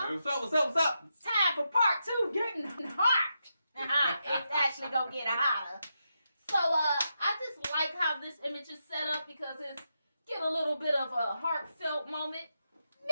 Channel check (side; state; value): both; inverted; correlation -0.85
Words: up? What's up? It's time for part 2, getting hot. It's actually gonna get hotter. So I just like how this image is set up because it's get a little bit of a heartfelt moment